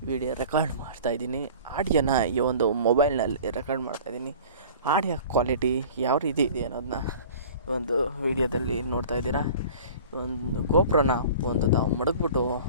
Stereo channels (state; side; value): inverted; both; correlation -0.43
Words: ವಿಡಿಯೋ ರೆಕಾರ್ಡ್ ಮಾಡ್ತಾಯಿದ್ದೀನಿ. ಆಡಿಯೋನ ಈ ಒಂದು ಮೊಬೈಲ್ನಲ್ಲಿ ರೆಕಾರ್ಡ್ ಮಾಡ್ತಾಯಿದ್ದೀನಿ. ಆಡಿಯೋ ಕ್ವಾಲಿಟಿ ಯಾವ ರೀತಿ ಇದೆ ಅನ್ನೋದನ್ನ ಒಂದು ವಿಡಿಯೋದಲ್ಲಿ ನೋಡ್ತಾ ಇದ್ದೀರಾ. ಒಂದು ಗೋಪ್ರೋನ ತಾವು ಮಡಗ್ಬಿಟ್ಟು